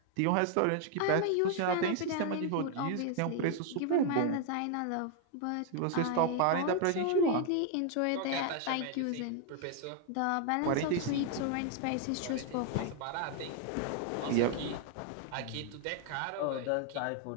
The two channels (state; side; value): different; both; correlation 0.01